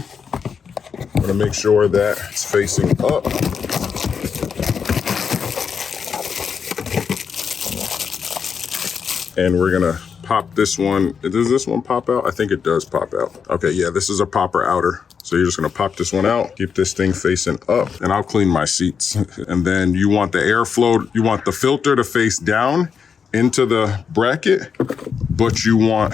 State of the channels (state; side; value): quieter; right; 6.5 dB